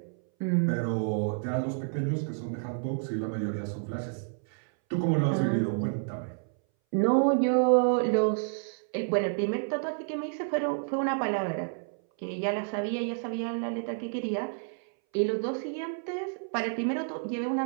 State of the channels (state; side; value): silent; left; 58 dB below the other